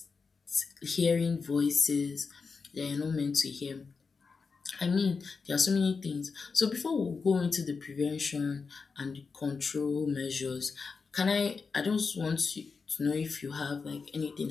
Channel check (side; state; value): right; quieter; 4.9 dB